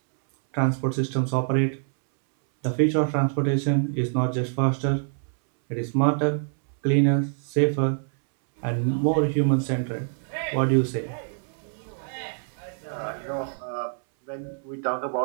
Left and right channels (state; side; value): silent; left; 61 dB below the other